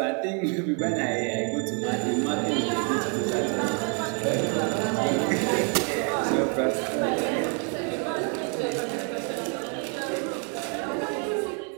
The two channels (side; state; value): left; quieter; 39.3 dB